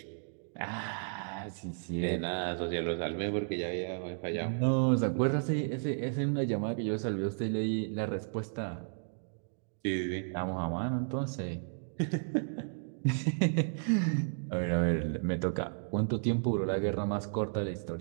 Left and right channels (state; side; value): silent; left; digital silence